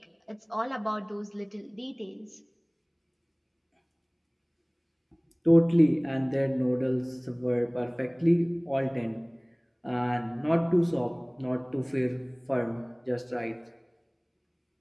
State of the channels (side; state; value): both; identical; correlation 1.00